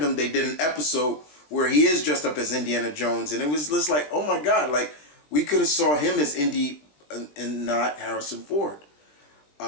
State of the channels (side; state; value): right; late; 20 ms